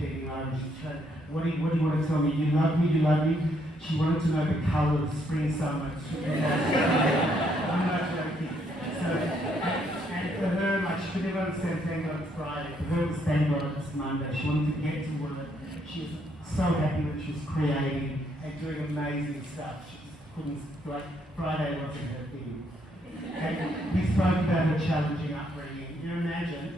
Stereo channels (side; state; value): both; normal; correlation 0.72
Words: over, and she's trying, what do you want to tell me? You love me? She wanted to know the colour of spring, summer. I'm not joking. So, and for her, like, she could never understand thank God it's Friday. For her, it was thank God it's Monday. She wanted to get to work. She was so happy that she was creating and doing amazing stuff. She just couldn't, like, Friday wasn't her thing. And we spoke about her challenging upbringing. You